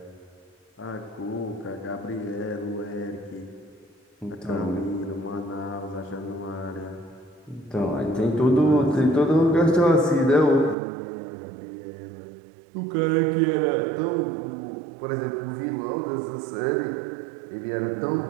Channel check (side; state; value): left; drops out; at 10.8 s